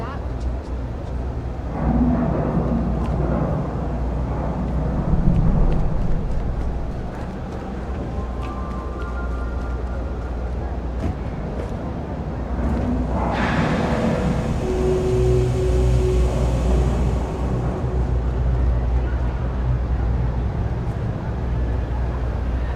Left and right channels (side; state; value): both; identical; correlation 1.00